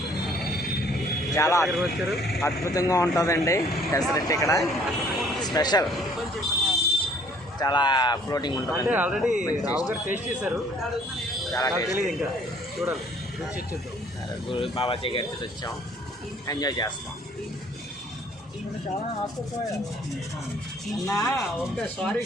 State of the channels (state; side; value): normal; both; correlation 0.58